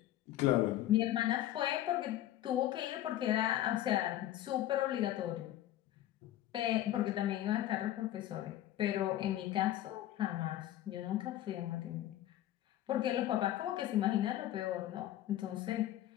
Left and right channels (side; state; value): right; quieter; 13.4 dB